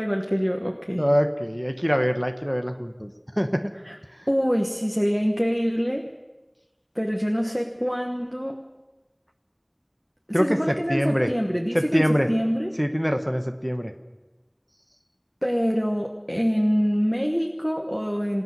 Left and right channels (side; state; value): both; identical; correlation 1.00